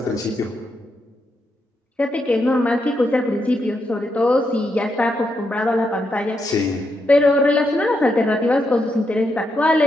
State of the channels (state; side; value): normal; both; correlation 0.82